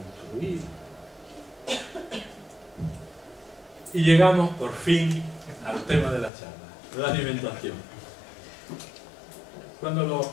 Y llegamos por fin al tema de la charla, la alimentación. Cuando los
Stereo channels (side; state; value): right; drops out; at 6.3 s